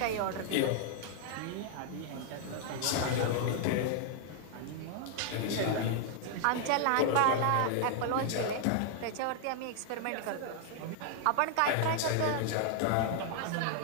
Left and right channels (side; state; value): both; different; correlation 0.00